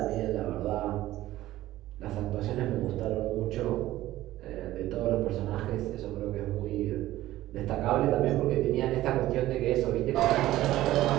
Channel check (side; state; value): left; quieter; 15.3 dB